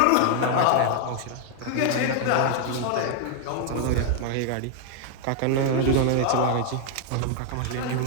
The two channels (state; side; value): different; both; correlation 0.00